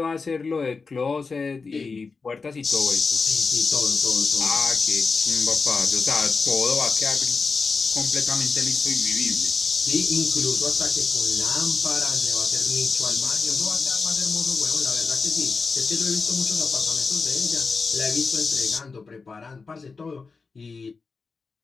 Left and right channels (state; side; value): quieter; right; 4.5 dB